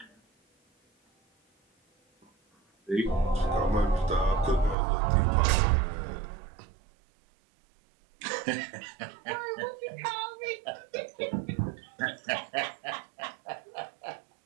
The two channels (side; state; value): left; drops out; at 4.8 s